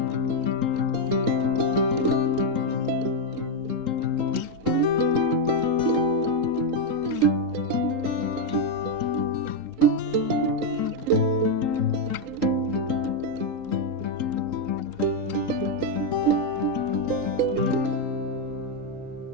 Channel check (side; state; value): left; late; 3.8 ms